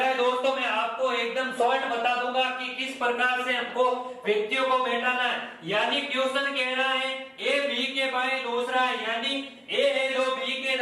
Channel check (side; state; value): both; identical; correlation 1.00